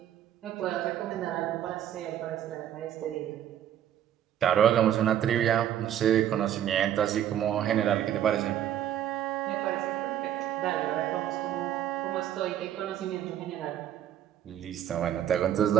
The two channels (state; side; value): quieter; left; 10.8 dB